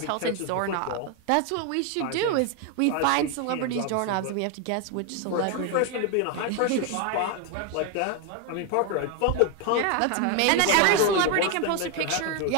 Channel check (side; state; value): both; different; correlation 0.01